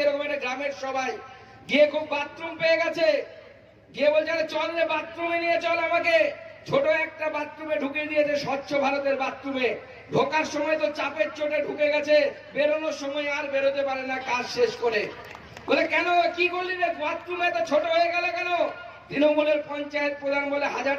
এরকম একটা গ্রামের সবাই গিয়ে খুব বাথরুম পেয়ে গেছে, গিয়ে বলছে আরে চল রে বাথরুমে নিয়ে চল আমাকে। ছোট একটা বাথরুমে ঢুকে দিয়েছে, স্বচ্ছ ভারতের বাথরুমে। ঢোকার সময় তো চাপের চোটে ঢুকে গেছে, বেরোনোর সময় আর বেরোতে পারে না কাজ শেষ করে। বলে কেন, কি করলি রে, বাথরুমে তো ছোট হয়ে গেল কেন? তৃণমূলের পঞ্চায়েত প্রধান বলে 1000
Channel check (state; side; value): identical; both; correlation 1.00